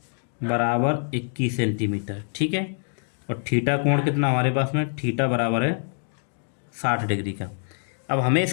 बराबर 21 सेंटीमीटर। ठीक है, और थीटा कोण कितना हमारे पास में, थीटा बराबर है 60 डिग्री का। अब हमें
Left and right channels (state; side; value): silent; right; digital silence